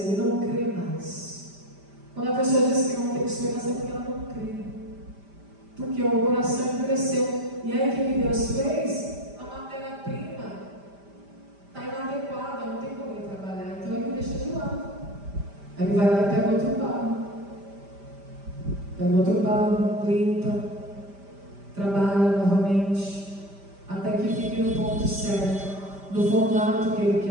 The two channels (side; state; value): left; late; 5.1 ms